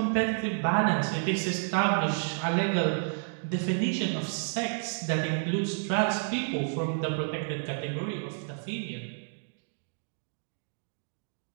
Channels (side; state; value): left; silent; digital silence